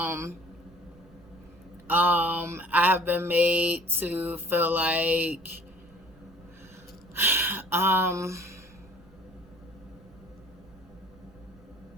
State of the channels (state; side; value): noise; right; rumble, 24 dB below the sound